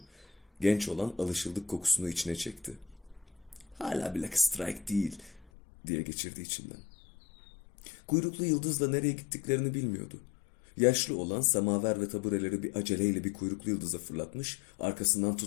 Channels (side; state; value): right; drops out; at 5.5 s